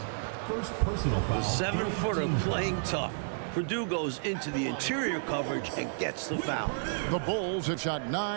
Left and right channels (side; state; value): left; silent; digital silence